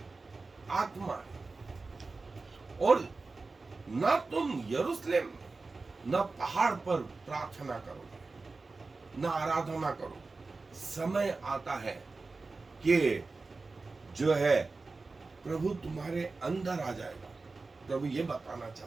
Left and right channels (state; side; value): quieter; left; 3.8 dB